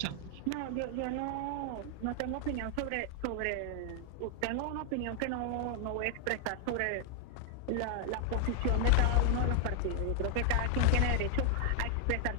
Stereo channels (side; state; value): both; different; correlation 0.00